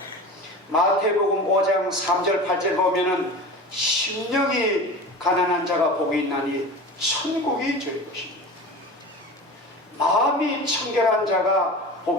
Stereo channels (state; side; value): normal; both; correlation 0.33